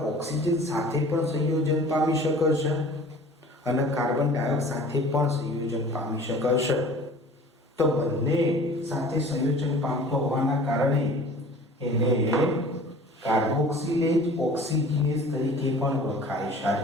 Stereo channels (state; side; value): normal; both; correlation 0.45